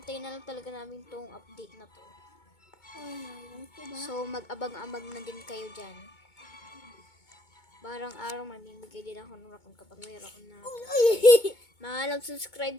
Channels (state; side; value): late; right; 2.2 ms